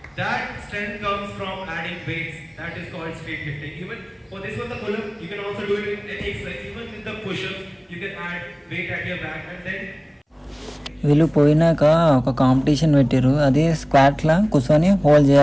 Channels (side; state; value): both; identical; correlation 1.00